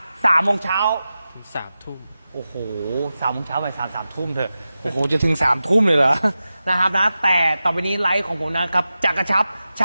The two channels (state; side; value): inverted; both; correlation -0.93